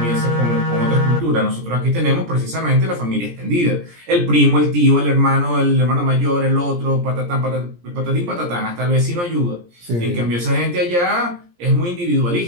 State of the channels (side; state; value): left; late; 17 ms